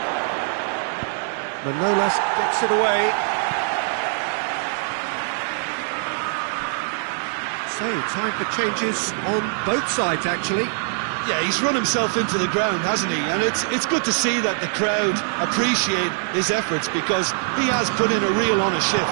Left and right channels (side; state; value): left; silent; 57 dB below the other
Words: Manolas gets it away. So, time for changes on both sides, actually. Yeah, he's run himself into the ground, hasn't he? And it's good to see that the crowd appreciate his efforts, because he has put in a real honest